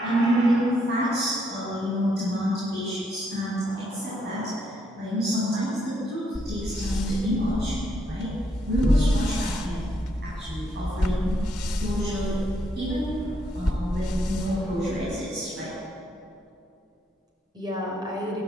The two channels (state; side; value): normal; both; correlation 0.75